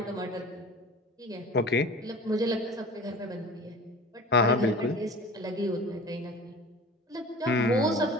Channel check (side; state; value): both; normal; correlation 0.38